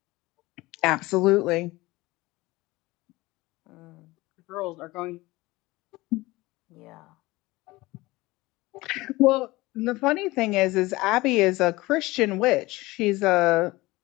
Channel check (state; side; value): quieter; right; 20.4 dB